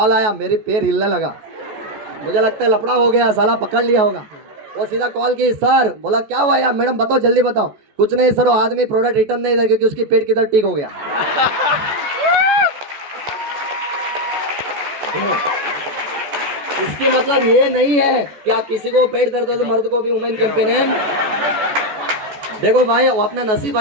आया, मेरे पैर हिलने लगा, मुझे लगता है लफड़ा हो गया, साला पकड़ लिया होगा। वो सीधा कॉल की, सर, बोला क्या हुआ यार, मैडम बताओ जल्दी बताओ। कुछ नहीं सर, वो आदमी प्रोडक्ट रिटर्न नहीं था क्योंकि उसकी पेट किधर ठीक हो गया। इसके मतलब ये नहीं है कि आप किसी को पेट दर्द हो तो मर्द को भी वुमेन कैंपेन। देखो भाई, वो अपना नसीब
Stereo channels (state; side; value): late; left; 14 ms